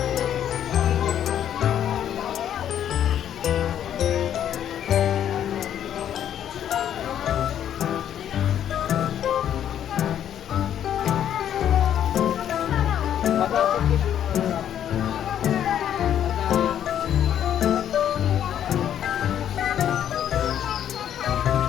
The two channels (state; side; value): quieter; right; 10.1 dB